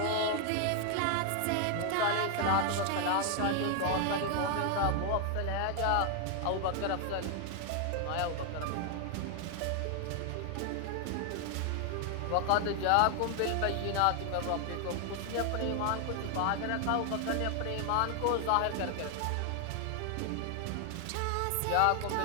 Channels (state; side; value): different; both; correlation 0.00